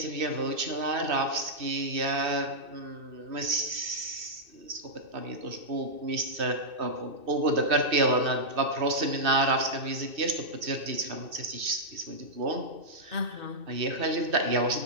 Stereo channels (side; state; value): left; late; 2.6 ms